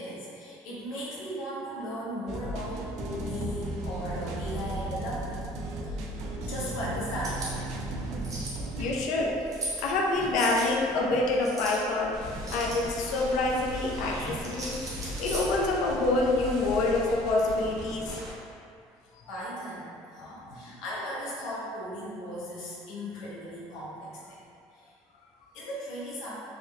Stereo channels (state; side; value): normal; both; correlation 0.50